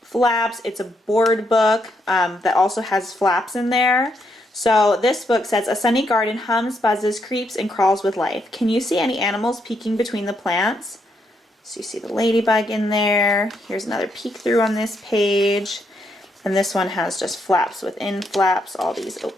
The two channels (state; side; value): normal; both; correlation 0.77